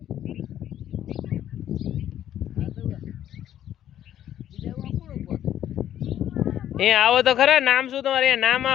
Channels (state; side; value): quieter; right; 11.2 dB